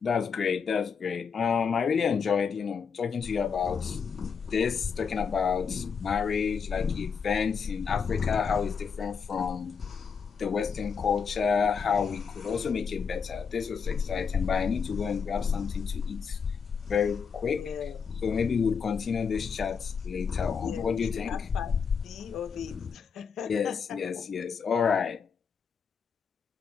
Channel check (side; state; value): right; quieter; 6.2 dB